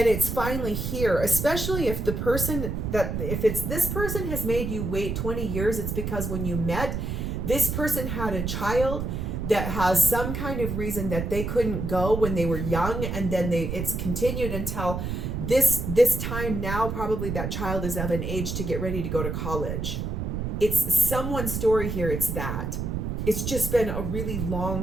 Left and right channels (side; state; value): right; noise; rumble, 3 dB below the sound